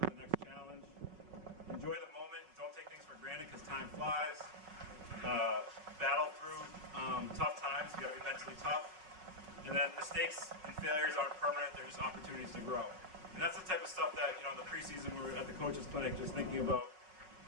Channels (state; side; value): late; left; 5.4 ms